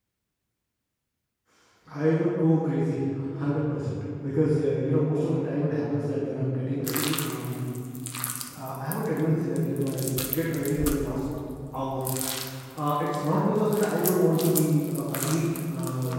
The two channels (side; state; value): both; identical; correlation 1.00